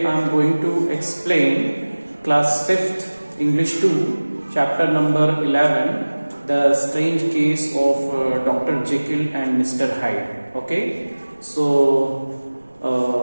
I am going to explain class 5th English 2 chapter number 11, the strange case of Dr. Jekyll and Mr. Hyde. Okay, so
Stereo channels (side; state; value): both; inverted; correlation -1.00